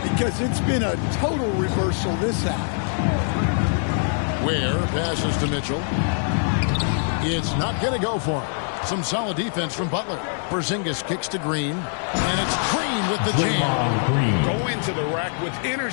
because it's been a total reversal this half. Ware passes to Mitchell. It's not going to go for him. Some solid defense from Butler. Porzingis kicks to Green. And it's Green with the jam. Go into the rack with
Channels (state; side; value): silent; right; 60 dB below the other